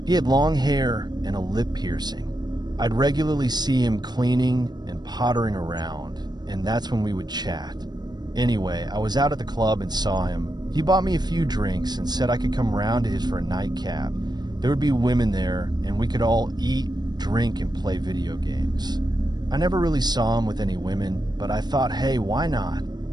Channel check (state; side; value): late; left; 0.20 ms